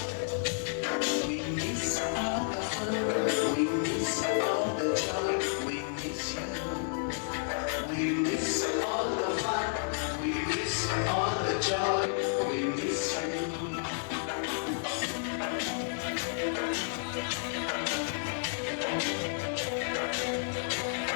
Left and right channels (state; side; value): silent; right; digital silence